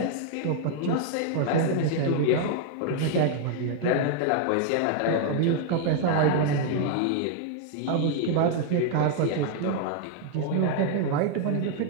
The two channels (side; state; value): both; different; correlation 0.00